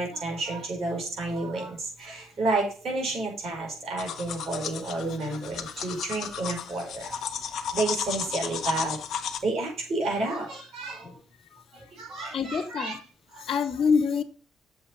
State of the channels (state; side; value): normal; both; correlation 0.68